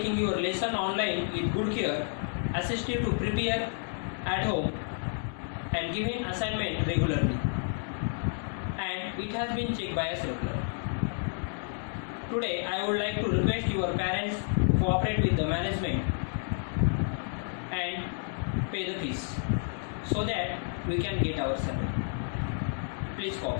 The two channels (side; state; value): right; silent; 58 dB below the other